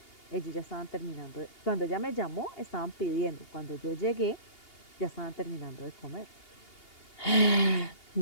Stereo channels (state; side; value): late; right; 2.8 ms